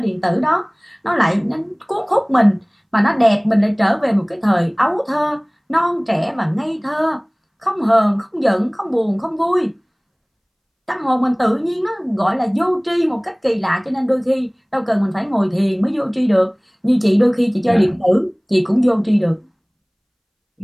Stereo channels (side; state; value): both; identical; correlation 1.00